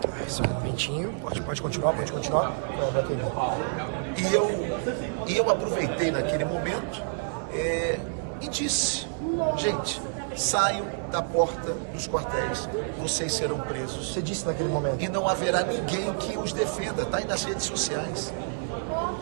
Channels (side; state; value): left; silent; 59 dB below the other